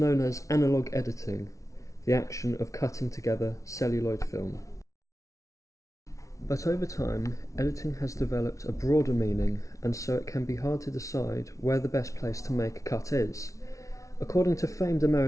as analog editing, the action of cutting together celluloid film. But over time, editing has developed a broader meaning, and so it can be hard to decide where the best place to make a cut is. According to famed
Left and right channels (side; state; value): right; late; 0.15 ms